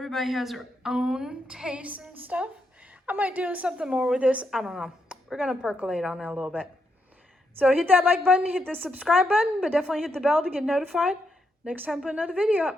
has their own taste and stuff. I might do something more with this. I don't know. We're going to percolate on it a little bit. So hit that like button, hit the subscribe button, but definitely hit the bell to get notified next time I put another video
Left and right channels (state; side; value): normal; both; correlation 0.81